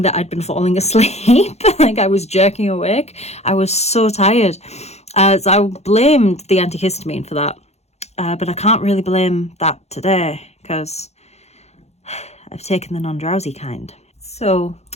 that I'd been falling asleep. Like I was jerking awake. I was so tired. So I blamed the antihistamine for that. But I can't really blame that today because I've taken the non-drowsy kind. So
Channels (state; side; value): late; right; 0.31 ms